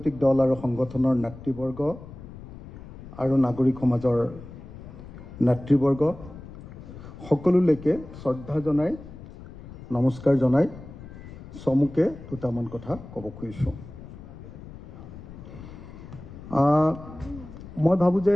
দল আৰু সংগঠনৰ নেতৃবৰ্গ আৰু নাগৰিক সমাজৰ নেতৃবৰ্গ সকলোলৈকে শ্ৰদ্ধা জনাই নমস্কাৰ জনাই চমুকে দুটামান কথা ক'ব খুজিছোঁ। মই ভাবোঁ যে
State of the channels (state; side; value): noise; left; rumble, 15 dB below the sound